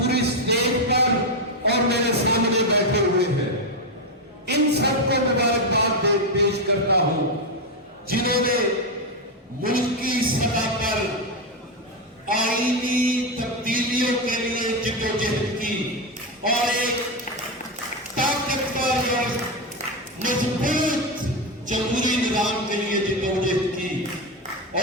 اسٹیج پر اور میرے سامنے بیٹھے ہوئے ہیں، ان سب کو مبارکباد پیش کرتا ہوں جنہوں نے ملکی سطح پر آئینی تبدیلیوں کے لیے جدوجہد کی اور ایک طاقتور اور مضبوط جمہوری نظام کے لیے جدوجہد کی،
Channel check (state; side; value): normal; both; correlation 0.09